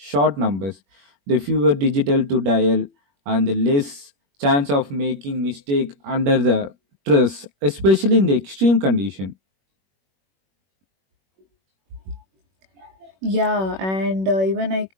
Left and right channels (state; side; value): late; left; 21 ms